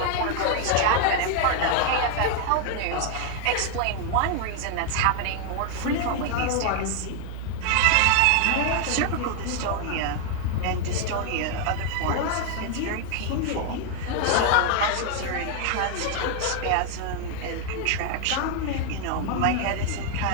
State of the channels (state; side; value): different; both; correlation 0.00